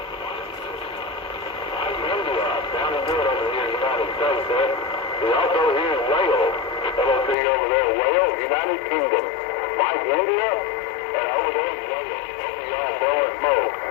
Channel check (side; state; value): right; drops out; at 7.4 s